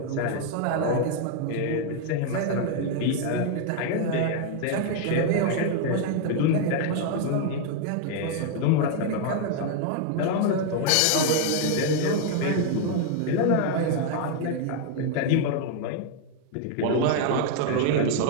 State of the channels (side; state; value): both; different; correlation 0.00